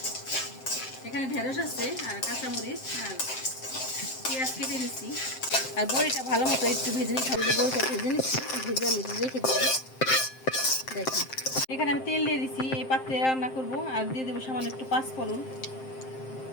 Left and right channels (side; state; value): right; late; 7.6 ms